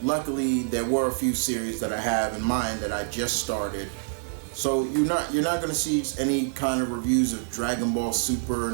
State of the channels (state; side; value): silent; left; digital silence